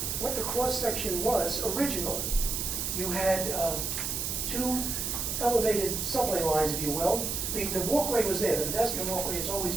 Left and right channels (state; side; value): noise; right; hiss, 2 dB below the sound